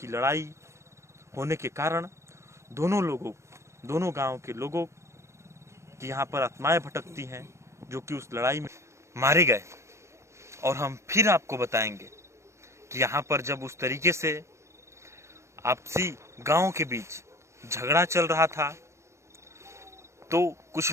लड़ाई होने के कारण दोनों गांव के लोगों की यहाँ पर आत्माएं भटकती हैं जो कि उस लड़ाई में मारे गए। और हम फिर आपको बताएंगे कि यहाँ पर जब उस तरीके से आपसी गांव के बीच झगड़ा चल रहा था तो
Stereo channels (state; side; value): late; left; 0.14 ms